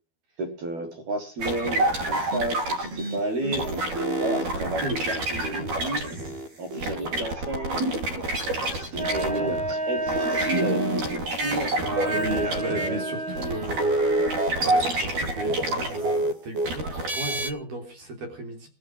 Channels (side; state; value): left; late; 12 ms